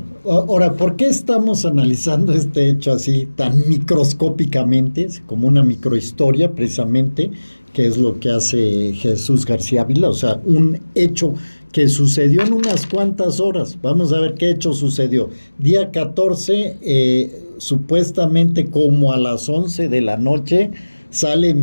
ahora, ¿por qué estamos analizando este hecho así tan microscópicamente, como una microhistoria precisamente, que es lo que hace Jesús García Ávila? O sea, un hecho que sucedió en unas cuantas horas. Vamos a ver qué hecho sucedió. Día 14, supuestamente como a las 11 de la noche, sale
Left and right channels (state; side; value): inverted; both; correlation -1.00